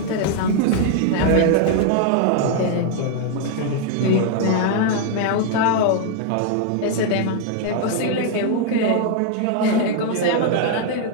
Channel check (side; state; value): both; different; correlation 0.00